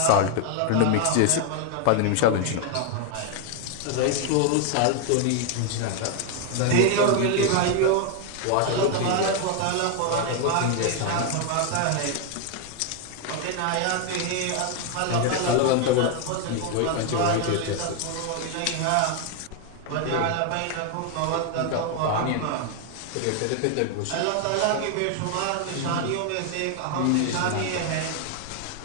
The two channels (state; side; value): different; both; correlation 0.00